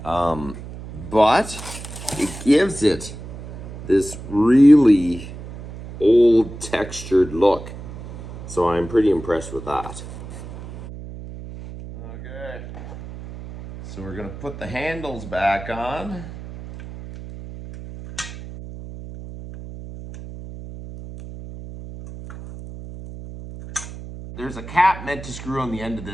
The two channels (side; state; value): right; noise; hum, 12 dB below the sound